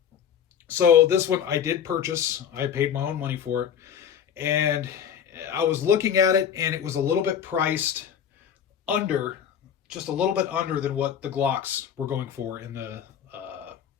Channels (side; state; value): right; quieter; 8.5 dB